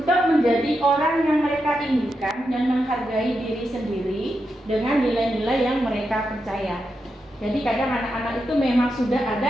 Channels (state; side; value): normal; both; correlation 0.86